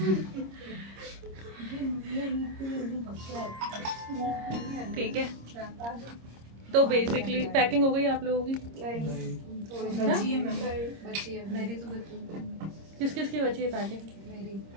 ठीक है, तो बेसिकली पैकिंग हो गई आप लोगों की? बची है मेरी तो बची। किस किस की बची है पैकिंग? मेरी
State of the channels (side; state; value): left; late; 26 ms